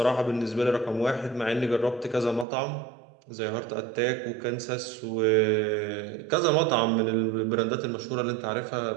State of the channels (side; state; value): left; drops out; at 2.5 s